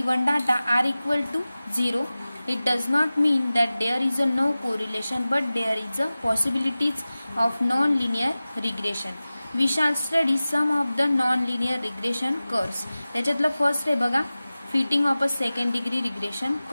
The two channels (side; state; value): both; inverted; correlation -0.97